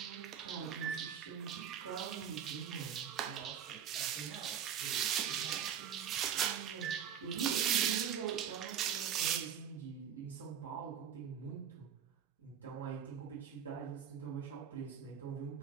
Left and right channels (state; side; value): quieter; left; 8.6 dB